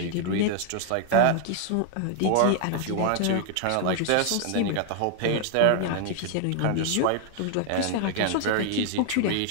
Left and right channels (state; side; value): different; both; correlation 0.00